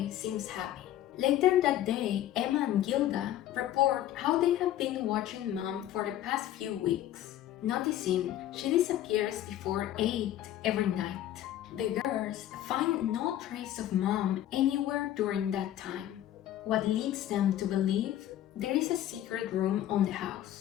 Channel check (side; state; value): right; quieter; 12.5 dB